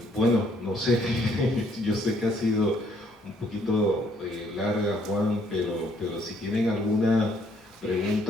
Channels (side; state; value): both; normal; correlation 0.67